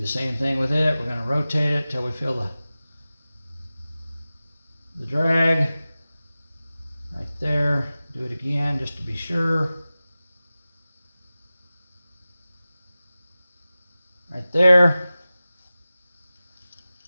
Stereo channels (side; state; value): both; inverted; correlation -0.96